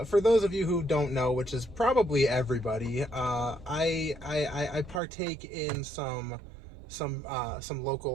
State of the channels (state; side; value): drops out; left; at 5.0 s